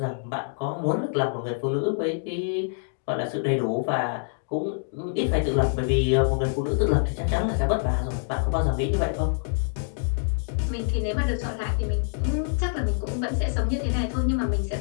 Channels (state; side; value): silent; right; digital silence